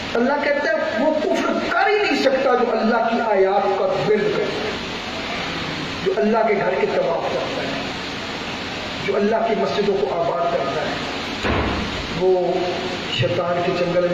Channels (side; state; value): both; identical; correlation 1.00